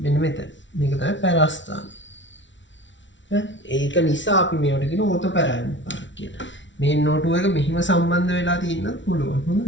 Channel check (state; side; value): late; right; 0.55 ms